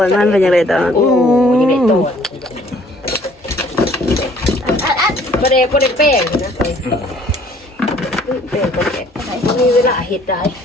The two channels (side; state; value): both; normal; correlation 0.58